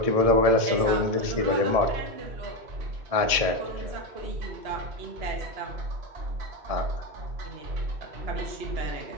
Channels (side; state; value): left; late; 1.7 ms